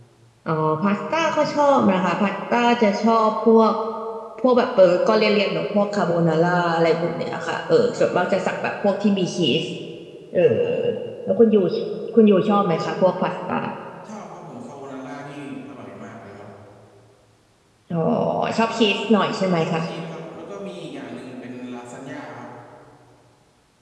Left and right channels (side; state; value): both; identical; correlation 1.00